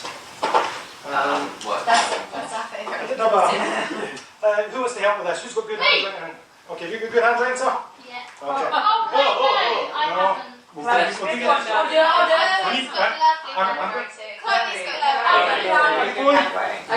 What? That's our favourite. Who wants to help with this? Who's got good handwriting? Okay, you got good handwriting, sir? Yeah. Okay. Oh, wait, no. I haven't. We'll Right, do pick this. one now.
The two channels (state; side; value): identical; both; correlation 1.00